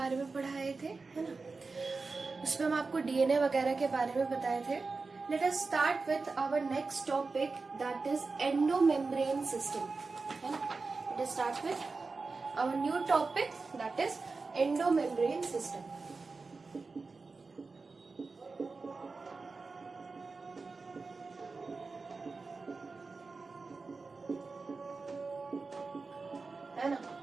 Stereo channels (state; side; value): quieter; left; 4.1 dB